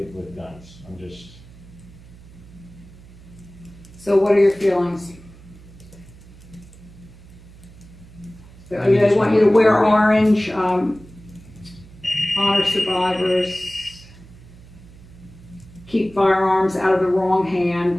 guns. I'm just. So what are your feelings? They want you to wear orange, honor survivors, keep firearms out of the wrong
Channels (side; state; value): right; noise; hum, 21 dB below the sound